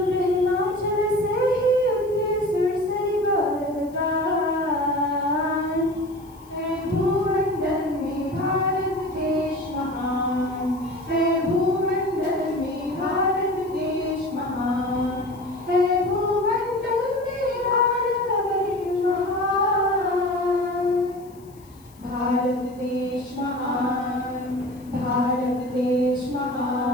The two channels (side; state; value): left; noise; hiss, 28 dB below the sound